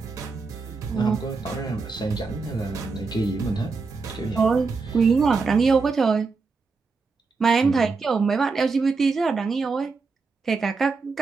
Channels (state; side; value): quieter; left; 4.5 dB